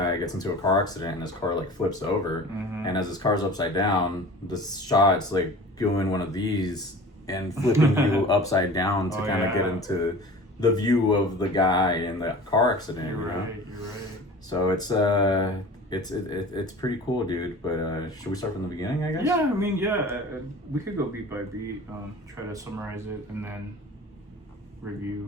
gets into a car accident and his car like flips over, and as his car's upside down, the shot's like doing one of these and flipping you upside down to kind of get into the view of the guy in the car accident. You're you know? right. So it's pretty cool, dude. But should we start from the beginning, I guess? Yeah, I mean, we could go beat by beat, try to summarize it, and then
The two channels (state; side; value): normal; both; correlation 0.40